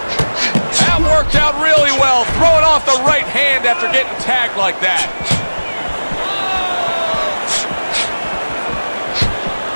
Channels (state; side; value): inverted; both; correlation -1.00